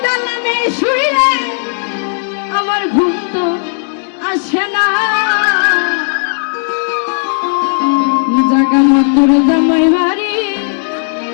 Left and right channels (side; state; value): right; silent; digital silence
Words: দালানে শুইলে আমার ঘুম তো আসে না জাগা মাতার জামাই বাড়ি